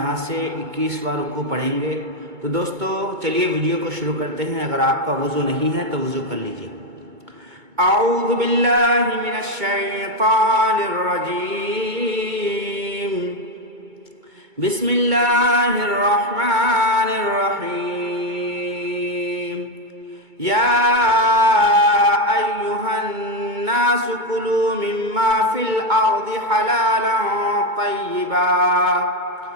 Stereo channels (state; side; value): late; left; 2.2 ms